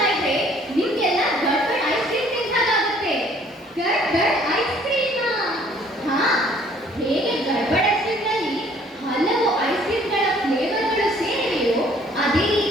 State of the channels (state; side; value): normal; both; correlation 0.58